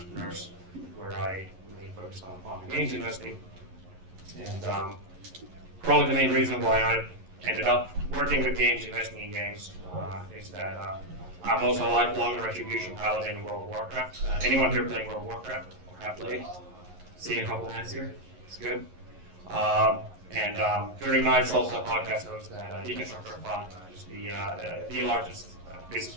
where I mainly focused on games investing. And probably the main reason why I ended up working with games, investing in games, is that I'm also a lifelong Retribution paladin in World of Warcraft. Anyone here playing World of Warcraft or have played? Seeing a couple hands here, it's good. And during nights, also a podcast host at Deconstructor Fund, which is the largest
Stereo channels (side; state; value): left; late; 11 ms